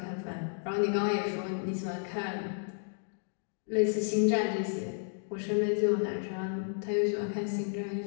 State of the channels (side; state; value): right; silent; digital silence